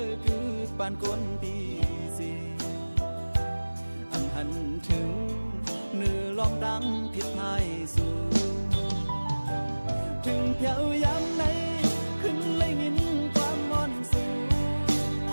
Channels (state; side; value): inverted; both; correlation -1.00